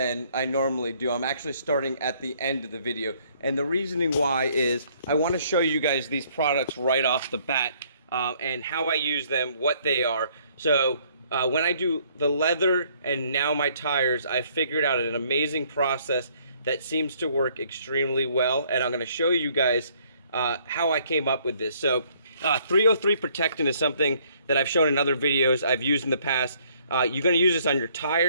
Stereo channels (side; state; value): both; inverted; correlation -0.64